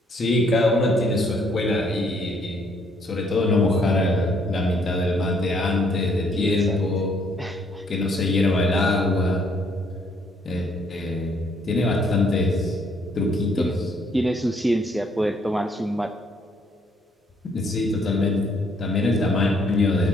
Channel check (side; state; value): both; normal; correlation 0.67